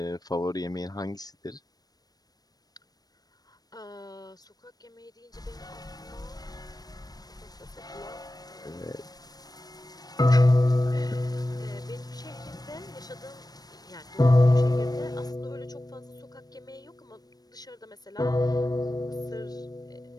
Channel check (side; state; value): right; late; 0.19 ms